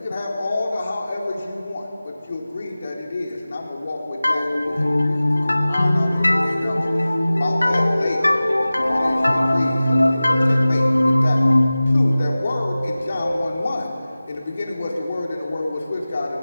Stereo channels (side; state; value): both; inverted; correlation -0.97